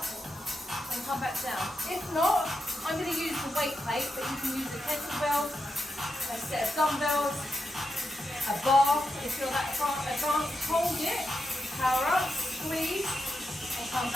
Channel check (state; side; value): normal; both; correlation 0.86